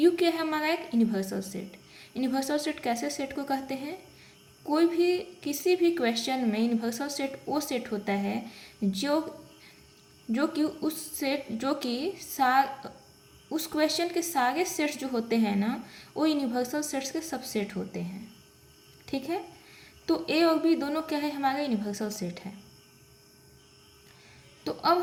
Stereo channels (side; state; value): both; identical; correlation 1.00